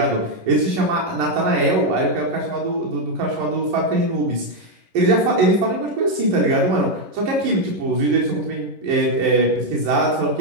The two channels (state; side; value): late; left; 11 ms